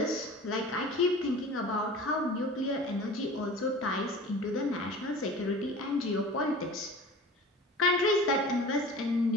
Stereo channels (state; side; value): normal; both; correlation 0.40